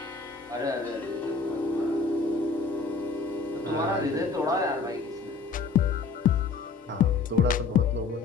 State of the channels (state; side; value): quieter; right; 4.7 dB